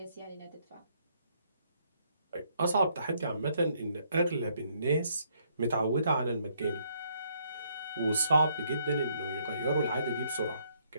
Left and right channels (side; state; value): both; inverted; correlation -0.70